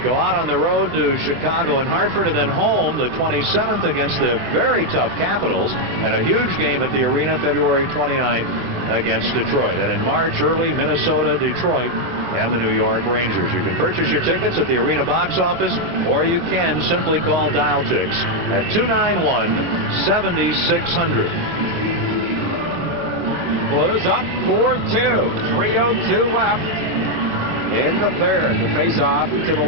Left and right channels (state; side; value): late; left; 24 ms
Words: go out on the road to Chicago and Hartford, and then home the 27th against the very tough Capitals, and a huge game at the arena February 29th against Detroit. And in March, early, Minnesota, Detroit, and the New York Rangers. You can purchase your tickets at the arena box office, or you can simply call Dial-Tix at 291-7600. Blues up 4-2. 3:02 left in the third. The face-off to the